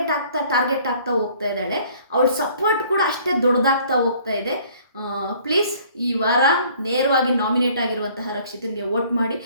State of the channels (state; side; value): inverted; both; correlation -0.56